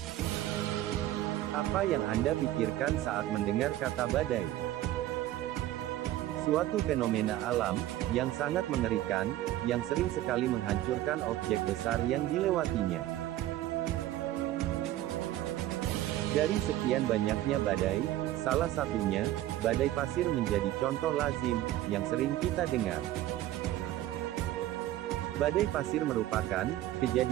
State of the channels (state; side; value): quieter; left; 14.4 dB